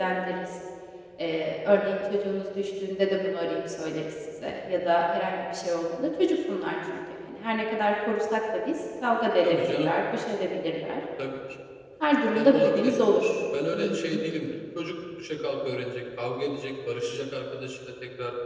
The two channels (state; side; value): identical; both; correlation 1.00